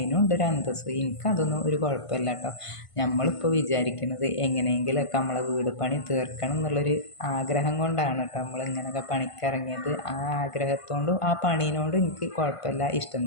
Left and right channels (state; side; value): late; right; 1.5 ms